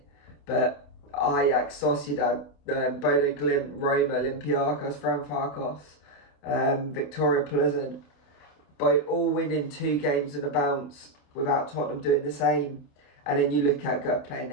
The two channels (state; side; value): late; right; 28 ms